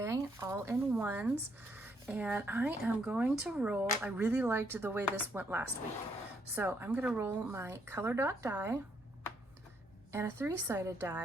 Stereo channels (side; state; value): both; normal; correlation 0.73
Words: all in ones. And I am going to roll, I really liked the way this went last week. So I'm gonna roll my color dot die and a 3-sided